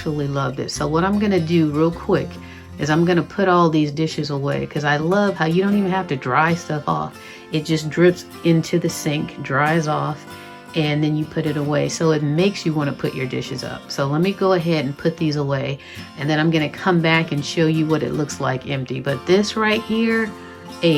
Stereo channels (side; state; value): both; identical; correlation 1.00